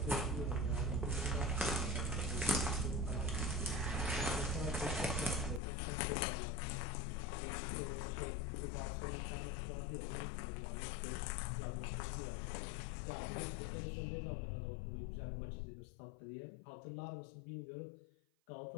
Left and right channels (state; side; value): drops out; right; at 5.6 s